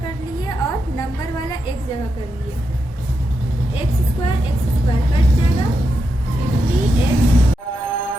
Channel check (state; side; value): normal; both; correlation 0.85